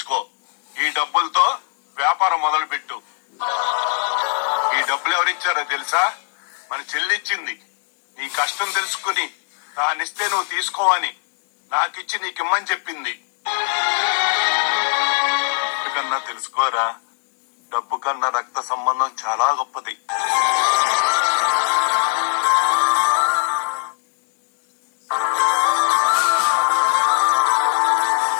ఈ డబ్బులతో వ్యాపారం మొదలు పెట్టు. ఈ డబ్బులు ఎవరిచ్చారో తెలుసా? మన చెల్లిచ్చింది. నీ కష్టం తెలుసుకుని దానిస్తే నువ్వు తీసుకోవని నాకిచ్చి నీకిమ్మని చెప్పింది. కన్నా తెలుసుకోరా, డబ్బు కన్నా రక్త సంబంధం చాలా గొప్పది.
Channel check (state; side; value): silent; right; digital silence